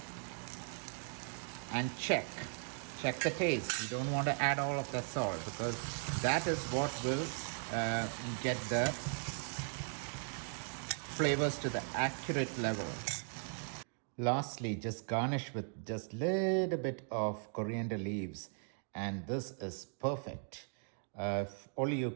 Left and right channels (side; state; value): left; silent; 52 dB below the other